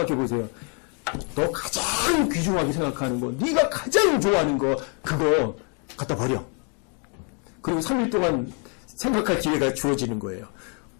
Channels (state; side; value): quieter; right; 38.4 dB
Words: 보세요. 너 가장 귀중하게 생각하는 거, 네가 가장 좋아하는 거, 그거 갖다 버려. 그리고 3일 동안 생각할 기회가 주어지는 거예요.